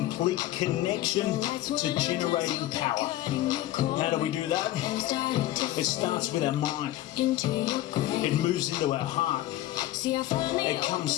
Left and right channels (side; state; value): right; quieter; 14.7 dB